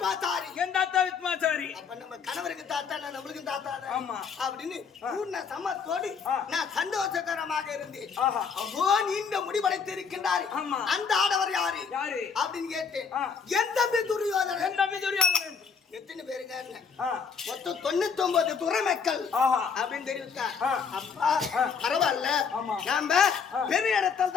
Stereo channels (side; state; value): right; quieter; 6.0 dB